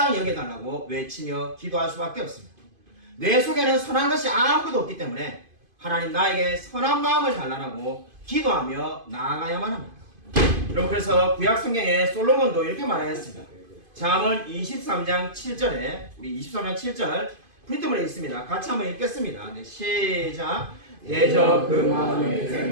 여겨달라고 외치며 기도할 수밖에 없습니다. 내 속에는 선한 것이 아무것도 없기 때문에 하나님 나에게 선한 마음을 달라고 기도하며 나아가야만 합니다. 여러분 그래서 구약 성경에 솔로몬도 이렇게 말하였습니다. 잠언 23장 7절에 우리 23장 7절 프린트문에 있습니다. 같이 한번 읽겠습니다. 네, 시작. 대저 그 마음의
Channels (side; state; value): left; late; 2.5 ms